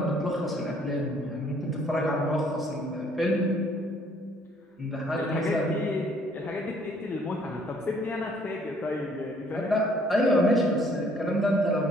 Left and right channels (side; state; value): both; normal; correlation 0.62